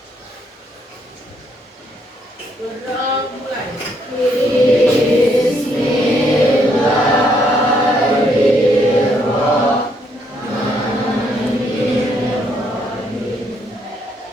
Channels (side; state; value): both; normal; correlation 0.72